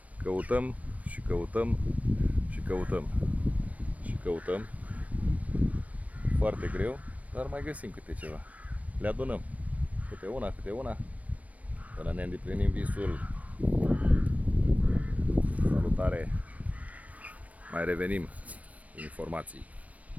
Căutăm și căutăm și căutăm și căutăm foarte greu, dar mai găsim câte ceva. Le adunăm câte una până ne îndeplinim visul. Salutare! Mai revenim cu informații.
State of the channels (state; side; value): late; left; 0.068 ms